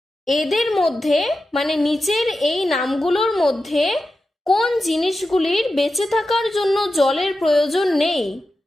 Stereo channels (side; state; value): both; normal; correlation 0.92